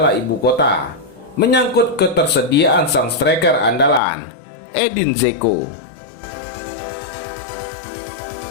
Ibu Kota menyangkut ketersediaan sang striker andalan, Edin Dzeko.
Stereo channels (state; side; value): drops out; right; at 4.0 s